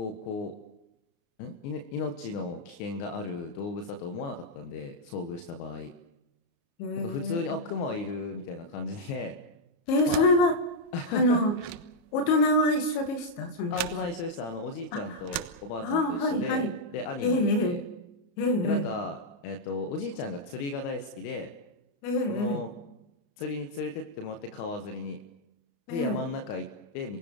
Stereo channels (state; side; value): late; right; 29 ms